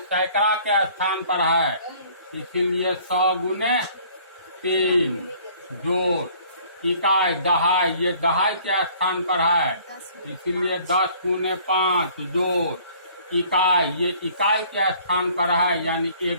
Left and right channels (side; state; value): both; inverted; correlation -0.55